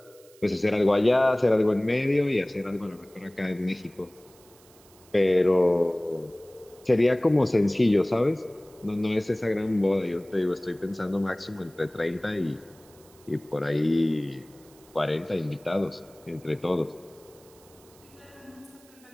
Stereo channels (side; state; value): right; noise; hiss, 27 dB below the sound